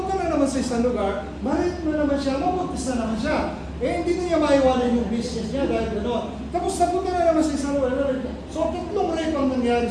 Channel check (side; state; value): both; identical; correlation 1.00